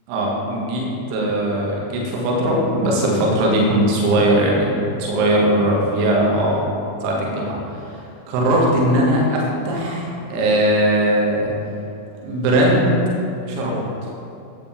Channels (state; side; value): late; left; 40 ms